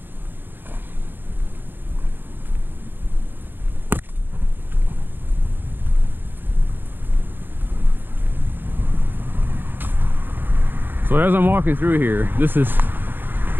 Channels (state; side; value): late; left; 0.096 ms